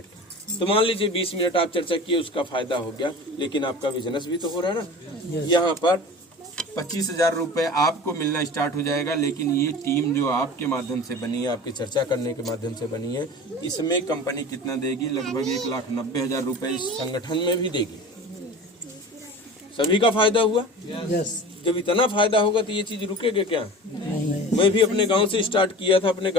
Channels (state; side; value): normal; both; correlation 0.37